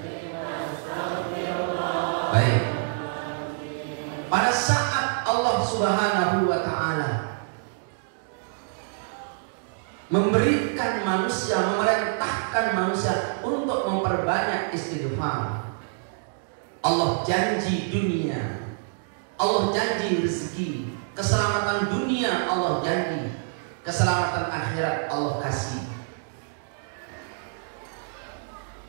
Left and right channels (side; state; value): left; silent; digital silence